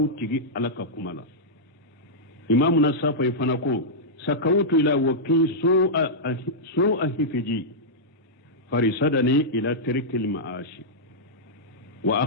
تيجي على كمالا إمامنا الصافي فنقول سكوت إلى وكي سوء حفظي فرصدني إلى ترك المعاش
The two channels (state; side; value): normal; both; correlation -0.10